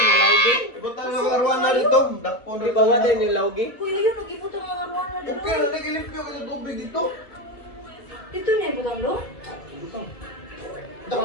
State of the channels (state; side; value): late; right; 2.1 ms